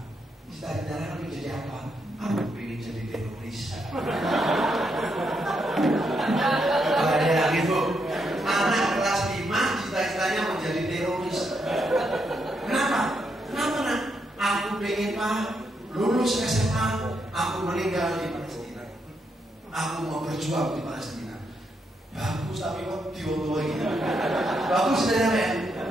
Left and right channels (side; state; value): both; normal; correlation 0.79